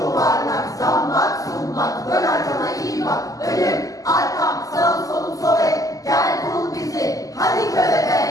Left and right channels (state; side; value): late; right; 0.17 ms